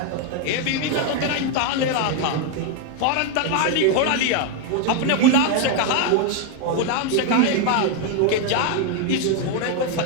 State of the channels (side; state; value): both; different; correlation 0.01